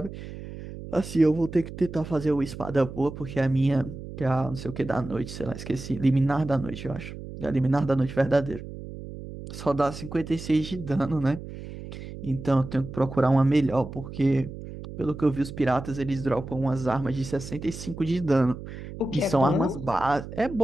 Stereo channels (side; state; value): right; noise; hum, 11 dB below the sound